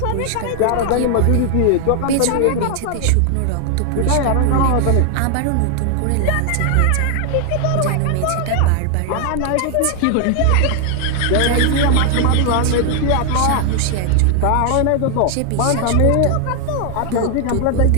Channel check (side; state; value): both; different; correlation 0.00